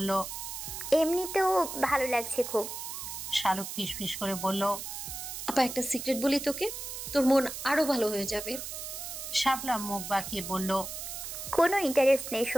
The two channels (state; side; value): noise; right; hiss, 7 dB below the sound